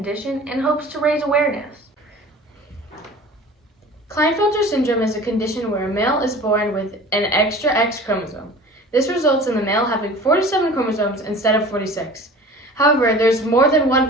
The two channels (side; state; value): both; normal; correlation 0.42